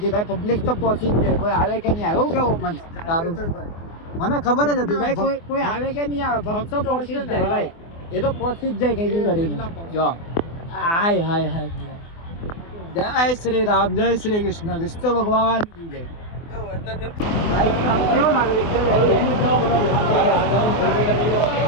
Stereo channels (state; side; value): late; right; 24 ms